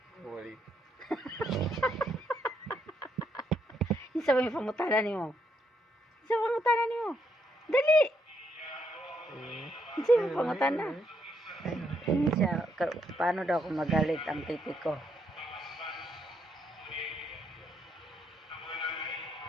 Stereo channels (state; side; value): normal; both; correlation 0.75